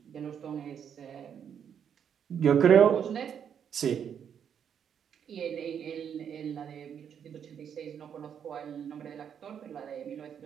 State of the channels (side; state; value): left; quieter; 8.2 dB